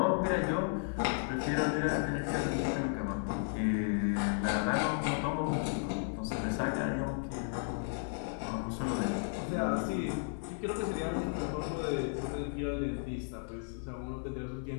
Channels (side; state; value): right; silent; 55 dB below the other